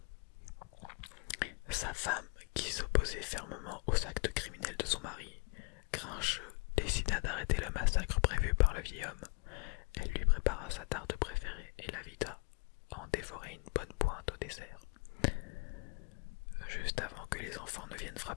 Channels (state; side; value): quieter; right; 31.9 dB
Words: Sa femme, qui s'opposait fermement aux actes criminels de son mari, grincheux, décida d'arrêter le massacre prévu par le vieil homme. Elle lui prépara sa tarte préférée et l'invita à en dévorer une bonne pointe au dessert. Juste avant que les enfants ne viennent